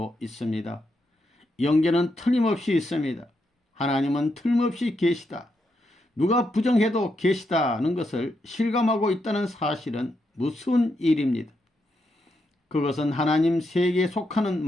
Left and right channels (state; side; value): normal; both; correlation 0.82